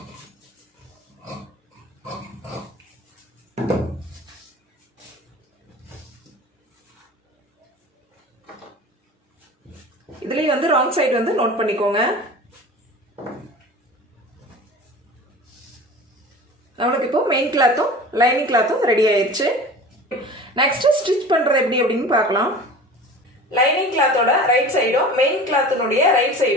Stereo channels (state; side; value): normal; both; correlation 0.38